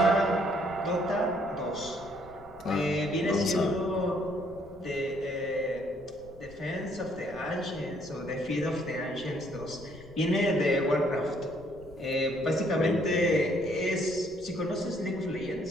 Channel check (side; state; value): left; noise; rumble, 23 dB below the sound